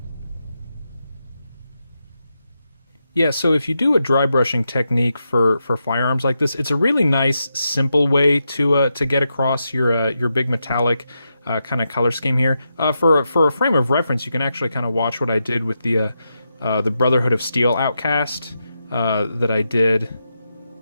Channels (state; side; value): inverted; both; correlation -0.86